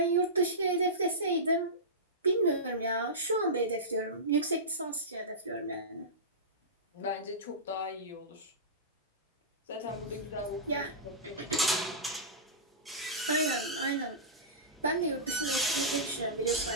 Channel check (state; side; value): normal; both; correlation -0.18